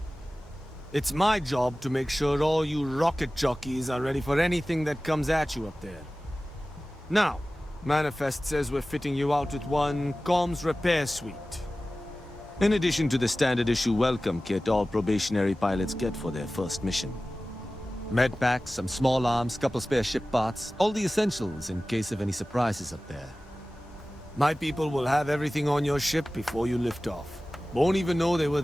It's my job to make sure all you rocket jockeys are ready for anything that comes at you up there. Now, Manifest says we're fitting you out with one comms repair suite. In addition to the standard issue welcome kit all probationary pilots get for their first mission. Med packs, some small arms, couple spare ship parts, all the essentials in case of any surprises up there. My people will have everything on your ship before you lift off. Won't even know they were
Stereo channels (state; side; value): normal; both; correlation 0.96